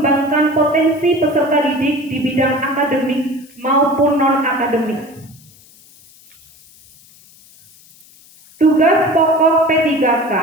potensi peserta didik di bidang akademik maupun non-akademik. Tugas pokok P3K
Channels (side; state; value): left; noise; hiss, 26 dB below the sound